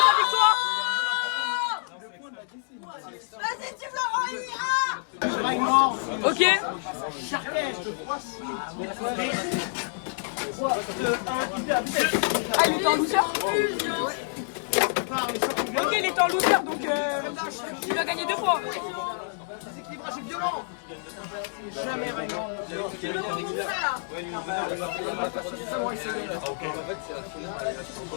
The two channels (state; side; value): silent; right; digital silence